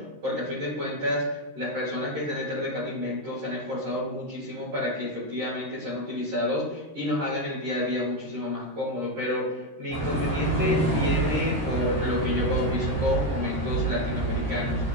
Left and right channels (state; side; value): late; left; 13 ms